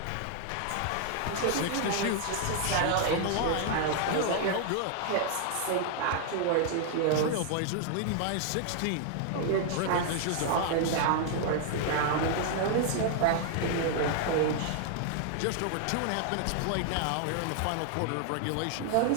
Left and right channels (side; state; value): both; different; correlation 0.00